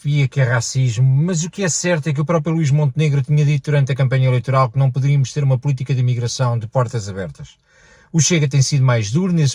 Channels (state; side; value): identical; both; correlation 1.00